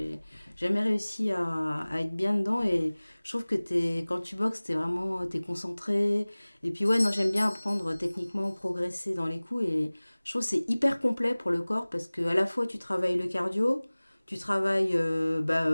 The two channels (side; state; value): both; inverted; correlation -1.00